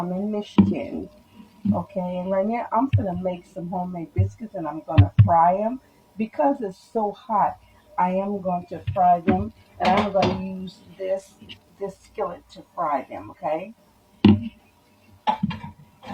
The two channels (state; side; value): identical; both; correlation 1.00